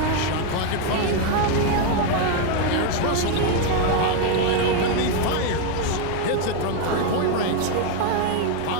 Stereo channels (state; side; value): different; both; correlation 0.01